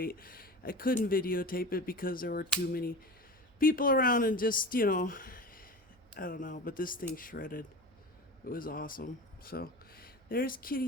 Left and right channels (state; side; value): noise; right; hum, 29 dB below the sound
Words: I couldn't videotape it because there were too many people around and just, I don't know, but this thing shredded. It was awesome. So there's